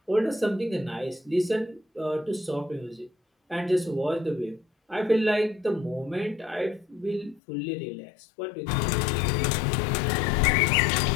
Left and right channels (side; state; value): right; drops out; at 7.4 s